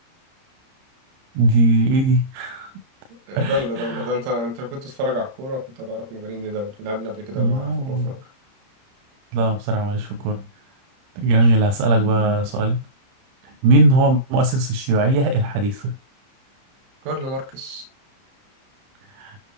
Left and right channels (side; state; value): left; late; 30 ms